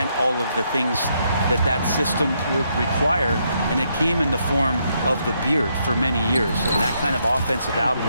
all of the things that system would require, and it came in the form of the beard for many years. And that kind of offensive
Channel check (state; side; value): inverted; both; correlation -0.76